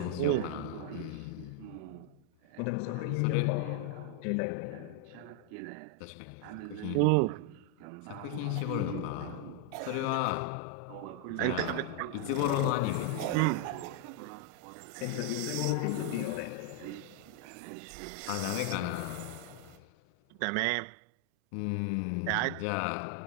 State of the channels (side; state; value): both; different; correlation 0.00